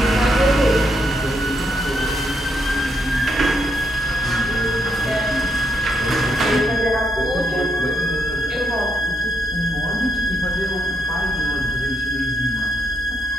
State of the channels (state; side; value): normal; both; correlation 0.78